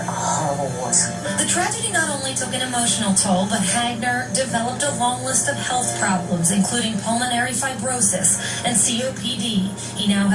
horrible war zone. The tragedy not only took an emotional toll, but Hagner developed a long list of health problems, including pulmonary fibrosis and COPD. He now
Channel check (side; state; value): both; identical; correlation 1.00